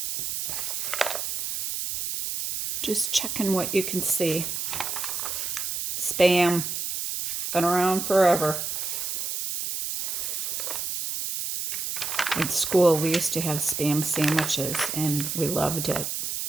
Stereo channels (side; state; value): right; noise; hiss, 3 dB below the sound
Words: Just checking what you can see. Spam. Been around forever. In school, we used to have Spam sandwiches, and we loved it.